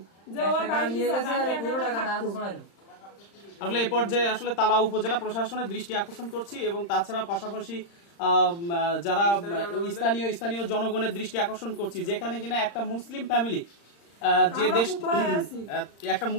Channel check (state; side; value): late; right; 35 ms